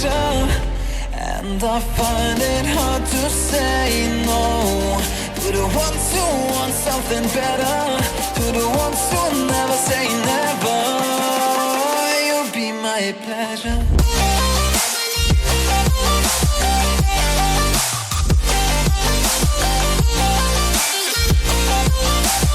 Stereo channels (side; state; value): both; identical; correlation 1.00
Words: And I find it hard to say no to the ones who want something better, to the ones who never say never. You'll be my pleasure.